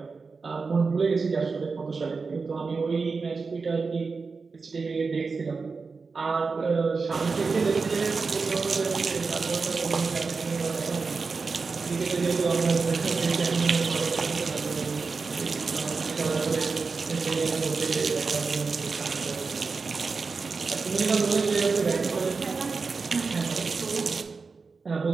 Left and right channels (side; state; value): left; quieter; 4.6 dB